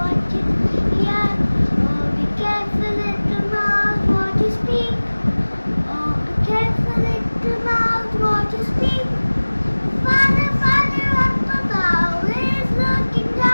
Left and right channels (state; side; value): inverted; both; correlation -1.00